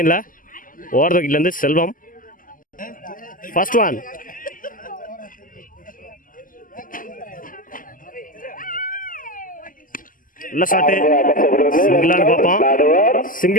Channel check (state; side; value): late; right; 0.40 ms